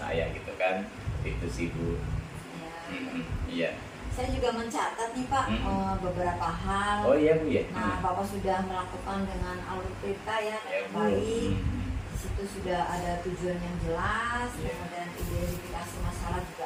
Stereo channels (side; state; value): both; identical; correlation 1.00